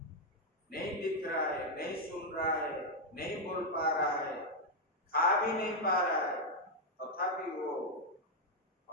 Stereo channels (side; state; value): both; normal; correlation 0.01